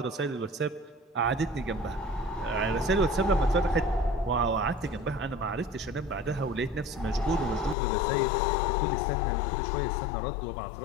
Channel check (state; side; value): drops out; right; at 7.8 s